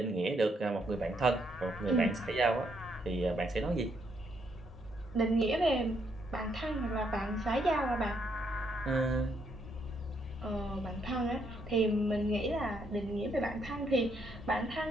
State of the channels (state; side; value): normal; both; correlation 0.74